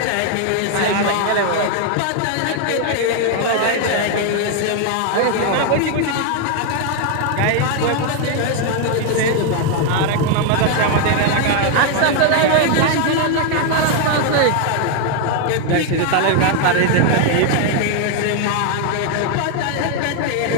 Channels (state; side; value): different; both; correlation 0.01